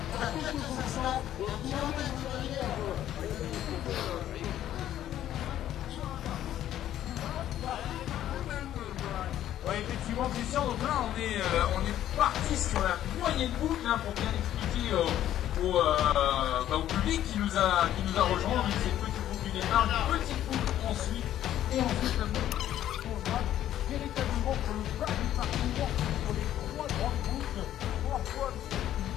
Ouais, effectivement, Christian, donc là on est parti sur la moyenne boucle hein, pour bien expliquer au public qui nous a rejoint. Donc c'est une petite boucle du départ, une petite boucle ensuite, et ensuite la boucle on va véritablement pour le bas du parcours sur les 3 grandes boucles, 3 fois le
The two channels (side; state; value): right; quieter; 12.0 dB